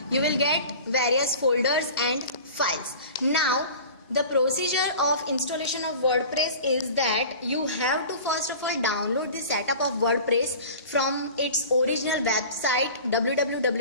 You will get various folders and files. Now, the procedure of installation of WordPress is that you have to first of all download the setup of WordPress from its original website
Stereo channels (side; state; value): both; inverted; correlation -0.39